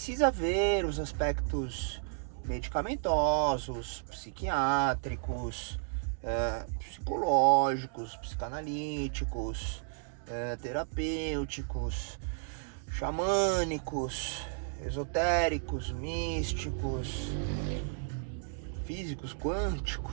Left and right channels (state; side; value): silent; left; digital silence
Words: ver os aspectos medicamentosos, psiquiátricos, psicológicos, psicanalíticos, terapêuticos, xamânicos, esotéricos, místicos, físicos,